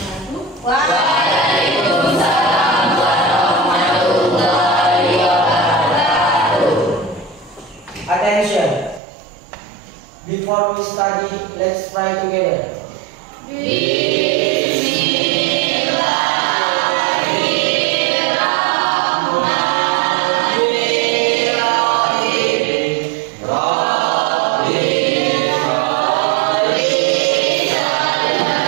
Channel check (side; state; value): left; drops out; at 9.0 s